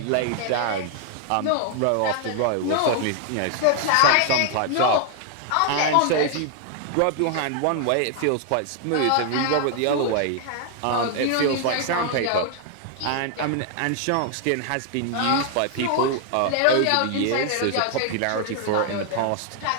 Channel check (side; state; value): both; different; correlation 0.00